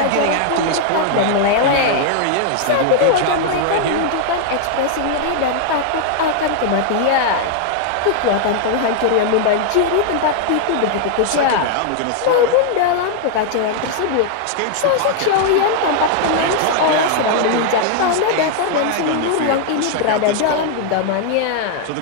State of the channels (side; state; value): both; different; correlation 0.00